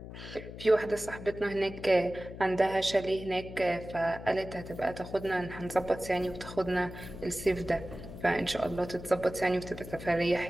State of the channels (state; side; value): noise; left; hum, 12 dB below the sound